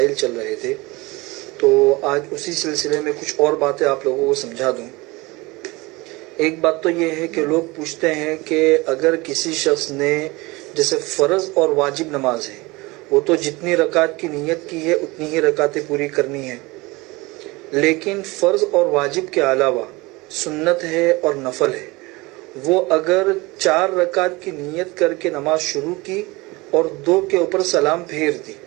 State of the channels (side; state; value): left; quieter; 23.2 dB